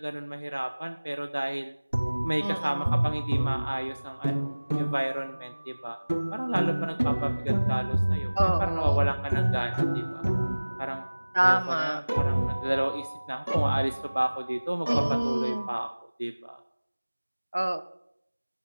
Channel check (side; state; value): both; inverted; correlation -1.00